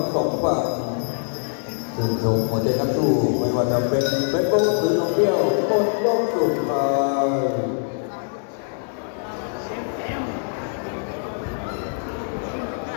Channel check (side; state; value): right; silent; digital silence